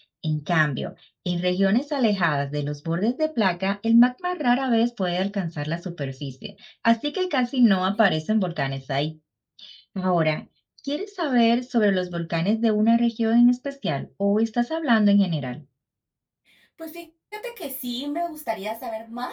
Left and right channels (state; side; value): identical; both; correlation 1.00